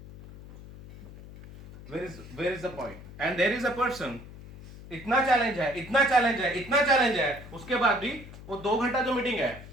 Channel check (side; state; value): left; noise; hum, 16 dB below the sound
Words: where is the point? And there is a person, इतना चैलेंज है, इतना चैलेंज है, इतना चैलेंज है, उसके बाद भी वो 2 घंटा जो मीटिंग है